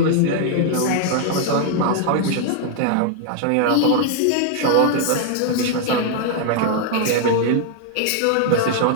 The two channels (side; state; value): both; different; correlation 0.00